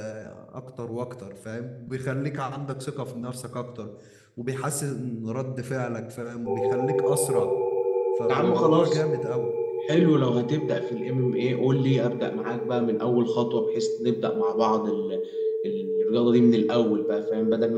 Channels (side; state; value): both; identical; correlation 1.00